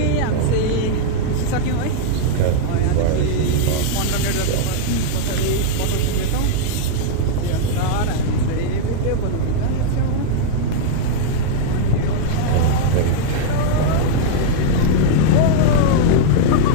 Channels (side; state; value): both; different; correlation -0.01